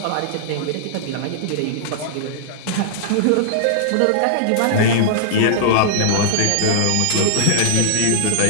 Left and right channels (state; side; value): different; both; correlation -0.02